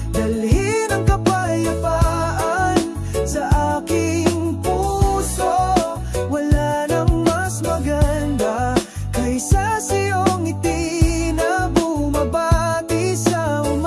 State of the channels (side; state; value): both; identical; correlation 1.00